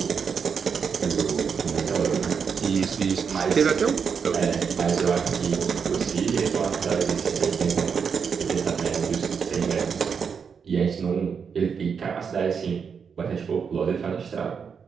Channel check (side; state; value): left; quieter; 6.3 dB